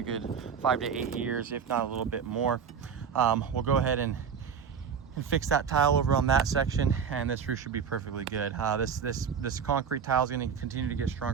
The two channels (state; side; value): quieter; left; 6.9 dB